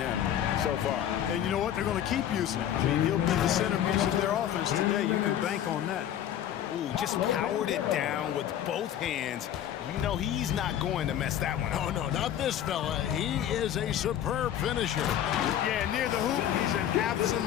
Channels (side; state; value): right; quieter; 10.7 dB